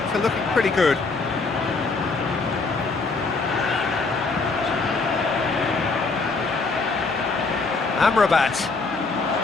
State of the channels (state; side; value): quieter; right; 4.0 dB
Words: are looking pretty good. Amrabat.